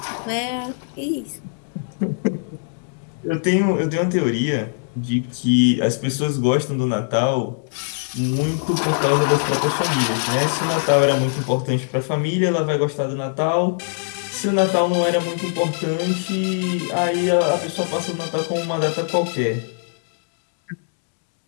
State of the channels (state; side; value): silent; right; digital silence